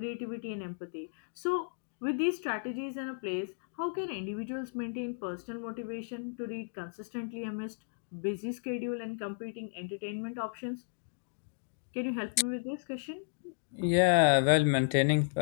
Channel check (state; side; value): silent; right; digital silence